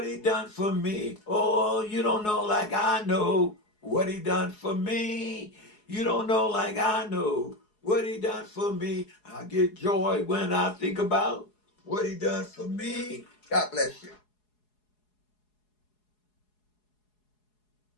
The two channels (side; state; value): right; late; 4.7 ms